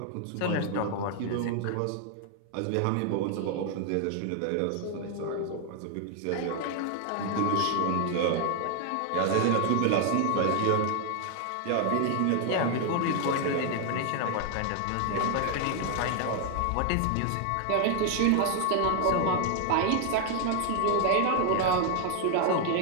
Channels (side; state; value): both; different; correlation 0.00